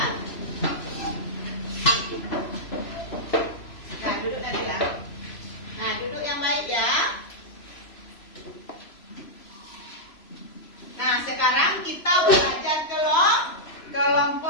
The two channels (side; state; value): right; late; 3.0 ms